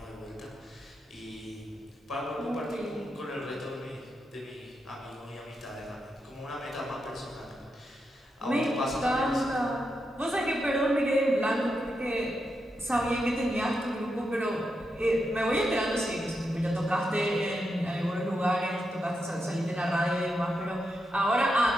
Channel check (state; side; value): normal; both; correlation 0.85